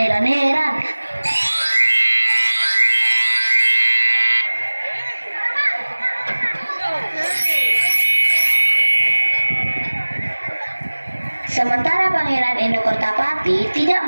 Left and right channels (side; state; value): both; inverted; correlation -1.00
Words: Sementara Pangeran Endokertapati